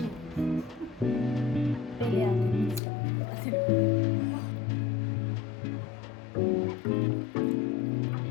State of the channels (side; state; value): right; drops out; at 2.8 s